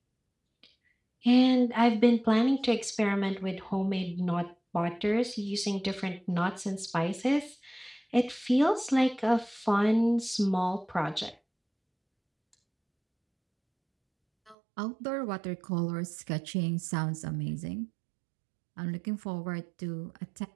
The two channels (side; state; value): left; drops out; at 14.6 s